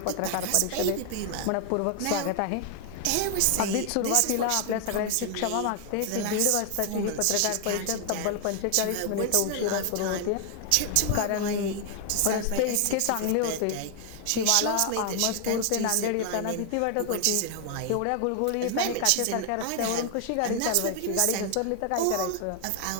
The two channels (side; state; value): both; different; correlation 0.00